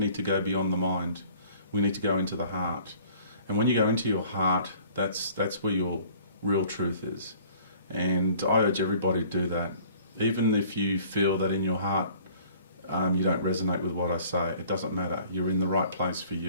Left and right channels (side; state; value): both; inverted; correlation -0.52